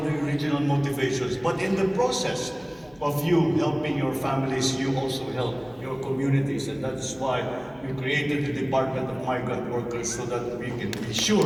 the original motivations. But in the process of you helping your families, you also help your communities, and that is why we created the Department of Migrant Workers, so that we can be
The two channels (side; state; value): left; noise; hum, 28 dB below the sound